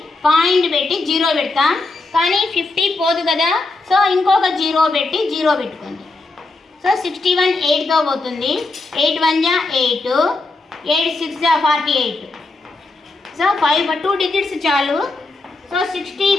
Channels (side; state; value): right; quieter; 3.3 dB